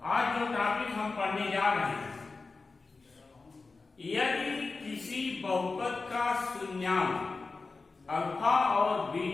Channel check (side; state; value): right; quieter; 4.0 dB